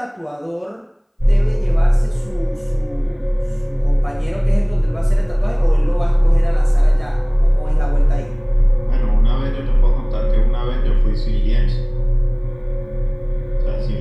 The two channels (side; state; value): both; identical; correlation 1.00